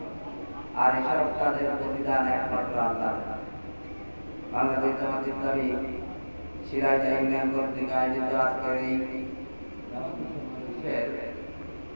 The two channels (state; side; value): inverted; both; correlation -1.00